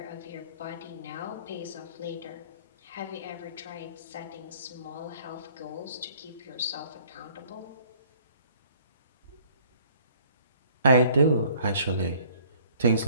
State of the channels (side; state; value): both; inverted; correlation -0.56